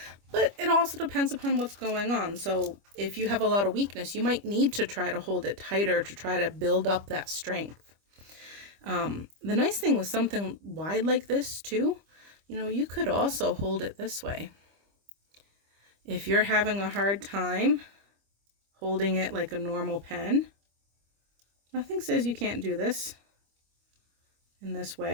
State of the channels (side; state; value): left; late; 25 ms